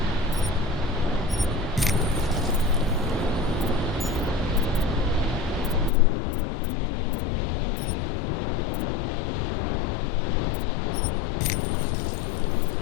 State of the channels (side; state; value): right; drops out; at 5.9 s